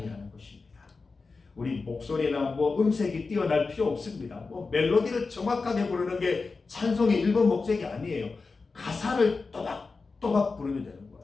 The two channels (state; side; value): quieter; right; 4.2 dB